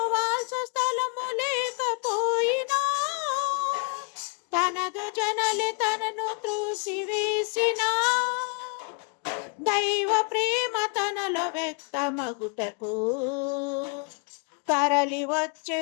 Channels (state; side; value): quieter; right; 33.3 dB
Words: వాల్చ స్థలము లేకపోయినా తనదు జనలే తనను త్రోసివేసిన దైవ ప్రేమ తనలో వ్యక్తమగుటకు తరలి వచ్చే